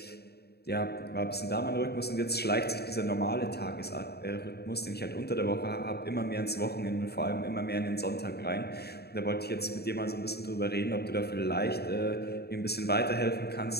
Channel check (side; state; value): right; late; 0.47 ms